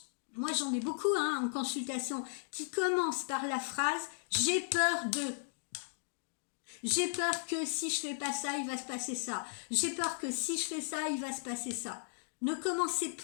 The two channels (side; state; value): right; silent; digital silence